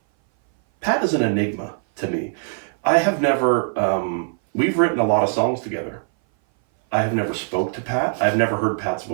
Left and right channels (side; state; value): left; silent; 59 dB below the other